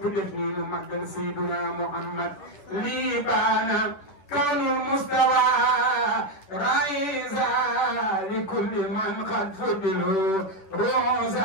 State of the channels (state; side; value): late; right; 10 ms